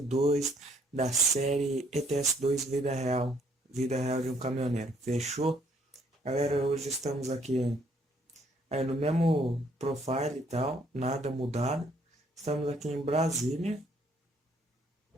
da série ETS2 Vida Real de um Caminhoneiro. Fechou? Galera, hoje estamos aqui aí no mesmo profile e tal, nada mudado. Estamos aqui em Brasília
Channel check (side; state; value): both; normal; correlation 0.65